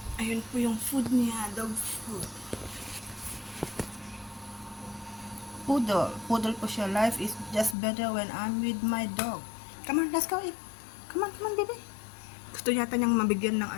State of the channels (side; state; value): right; drops out; at 7.8 s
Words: Ayun po yung food niya, dog food. Poodle. Poodle po siya. Life is just better when I'm with my dog. Come on, let's go eat. Come on, baby. Gusto yata niyang mabigyan ng